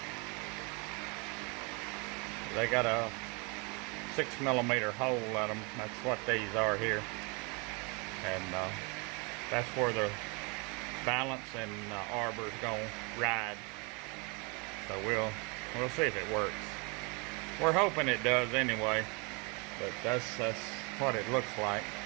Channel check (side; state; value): left; quieter; 31.1 dB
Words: They got a 6mm hole in them. That's what these are here, and that's where the balance and arbor's gonna ride. So we'll see if it works. We're hoping it does anyway, but that's what it looks like.